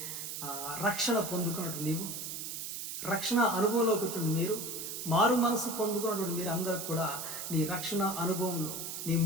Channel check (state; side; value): noise; right; hiss, 6 dB below the sound